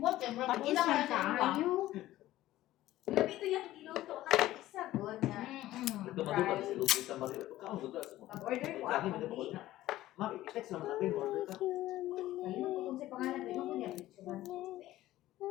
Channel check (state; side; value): quieter; right; 15.3 dB